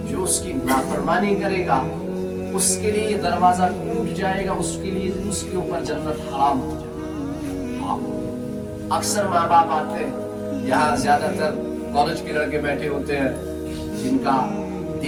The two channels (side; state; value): both; identical; correlation 1.00